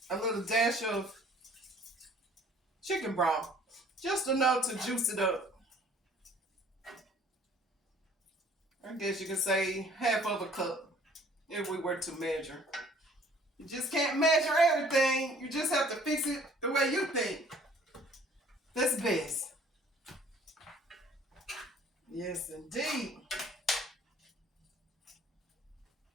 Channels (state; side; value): normal; both; correlation 0.55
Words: a little dash of chicken broth. Just enough to juice it up. I guess you can say half of a cup if we were to measure. You just can't measure everything. You just have to fix it the way you think. That's best. Yes, indeed.